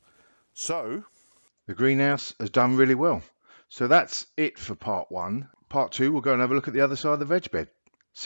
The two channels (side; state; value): both; inverted; correlation -1.00